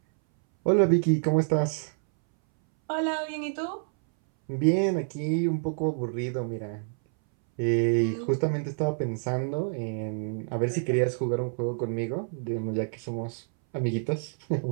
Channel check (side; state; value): left; silent; 60 dB below the other